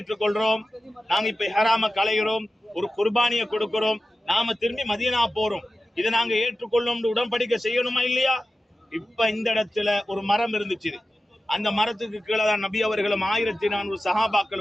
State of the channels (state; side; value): normal; both; correlation 0.94